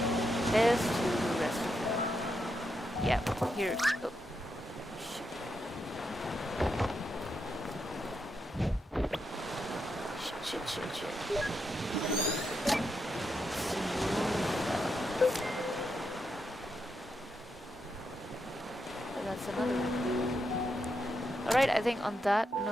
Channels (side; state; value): both; normal; correlation 0.83